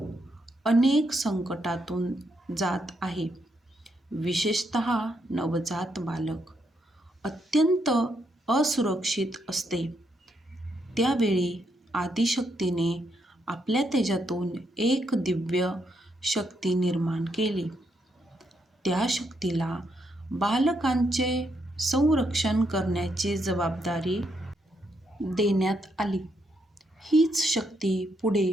अनेक संकटातून जात आहे. विशेषतः नवजात बालक अत्यंत असुरक्षित असते. त्यावेळी आदिशक्तीने आपल्या तेजातून एक दिव्य शक्ती निर्माण केली. त्या शक्तीला बालकांचे संरक्षण करण्याची जबाबदारी देण्यात आली. हीच शक्ती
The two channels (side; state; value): both; normal; correlation 0.78